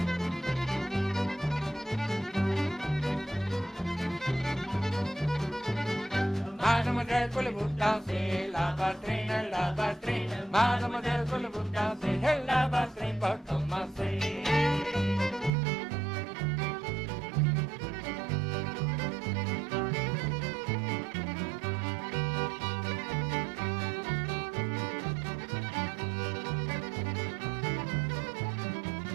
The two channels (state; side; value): drops out; left; at 15.5 s